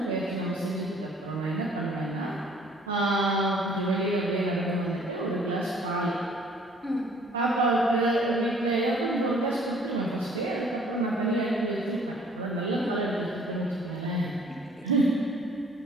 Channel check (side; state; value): both; normal; correlation 0.56